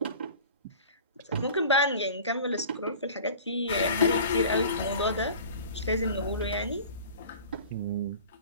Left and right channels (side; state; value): both; inverted; correlation -0.42